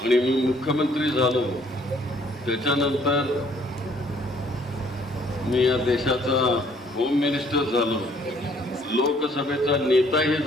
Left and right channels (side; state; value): both; normal; correlation 0.62